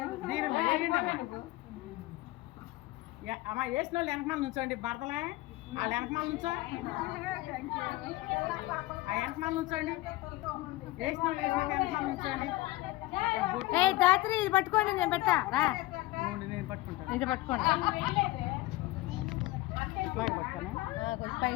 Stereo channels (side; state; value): right; quieter; 18.6 dB